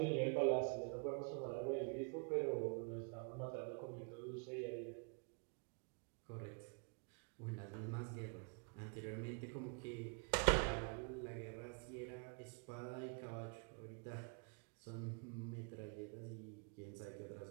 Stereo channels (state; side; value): quieter; left; 37.2 dB